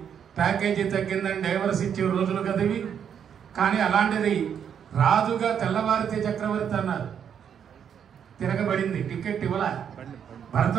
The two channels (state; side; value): quieter; left; 8.2 dB